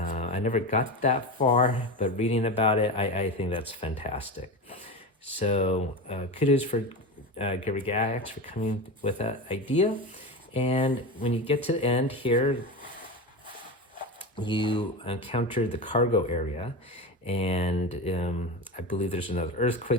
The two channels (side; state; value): both; normal; correlation 0.23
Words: never got that far, but reading about it, I think that's fantastic. So kudos for Gygax for coming with that idea. And when you get to the end here, you encounter the cargo area. And I believe there's another